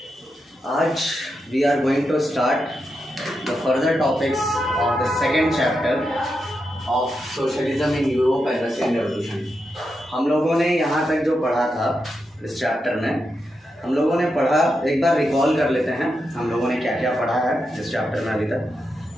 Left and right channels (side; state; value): both; normal; correlation 0.86